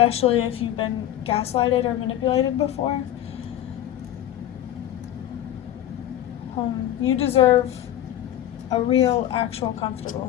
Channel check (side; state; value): right; quieter; 12.2 dB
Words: if you've been gaslighted or manipulated before. You deserve a real, actual, comfortable